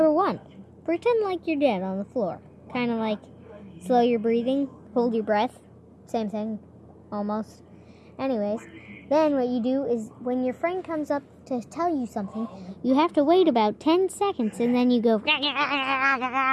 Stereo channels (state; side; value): identical; both; correlation 1.00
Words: 1, pretend like you're dead on the floor. Kind of like slow your breathing, hold your breath, same thing, almost. Anyways, then what you do is when your friend comes up to tell you something, you have to wait about 10 seconds and then you go